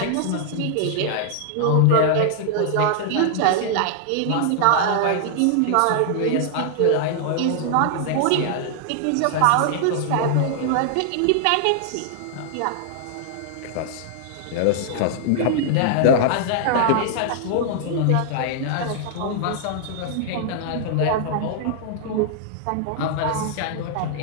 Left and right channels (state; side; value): different; both; correlation -0.01